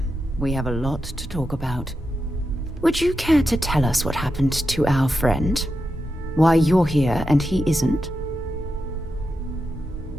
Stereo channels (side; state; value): both; normal; correlation 0.88